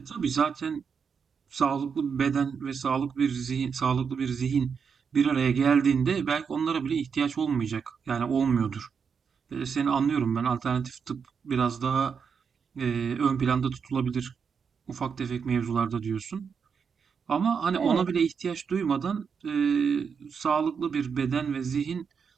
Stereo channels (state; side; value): quieter; left; 6.3 dB